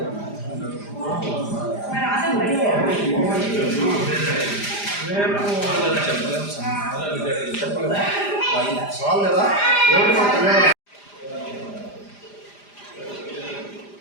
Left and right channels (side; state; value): right; late; 4.9 ms